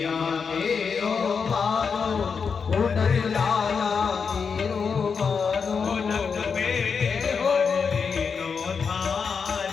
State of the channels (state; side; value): quieter; right; 5.8 dB